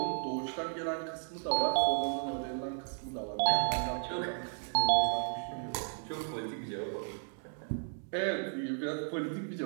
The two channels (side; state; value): left; silent; 55 dB below the other